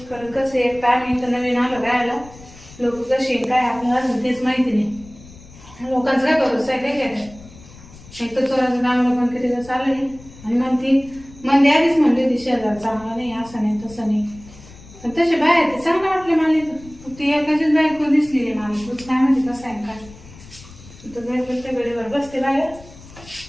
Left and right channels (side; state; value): left; noise; rumble, 20 dB below the sound